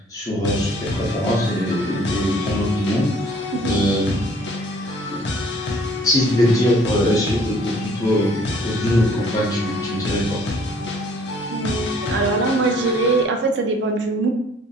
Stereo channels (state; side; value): normal; both; correlation 0.57